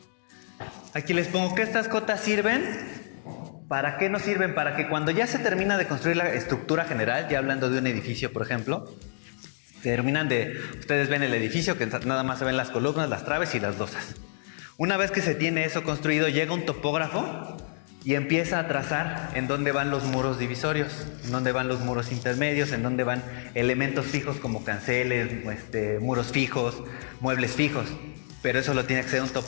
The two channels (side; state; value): right; silent; digital silence